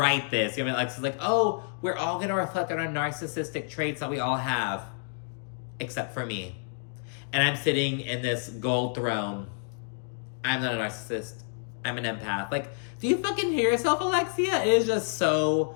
this. You know, like, it's like, oh, we're all going to reflect on our narcissistic traits that we all have. Except for me. And I'm sitting in this gold throne. I'm not a narcissist. I'm an empath. Like, do you fucking hear yourself, Alexia? It is just so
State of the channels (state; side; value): silent; right; digital silence